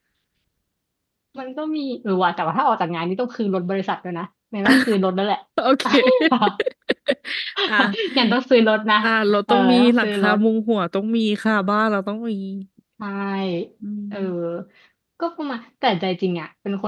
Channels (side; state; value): both; identical; correlation 1.00